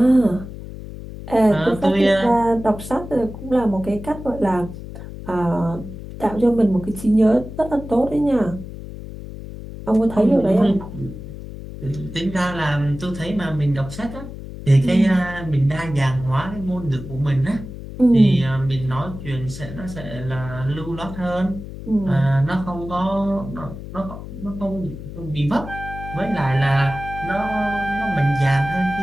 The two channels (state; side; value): noise; left; hum, 11 dB below the sound